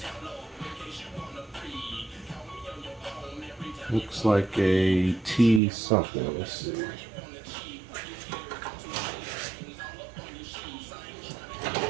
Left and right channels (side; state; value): left; drops out; at 5.6 s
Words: Looks like a T something. Let's see.